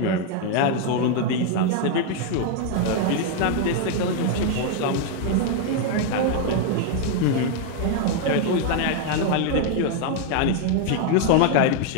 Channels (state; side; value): different; both; correlation 0.00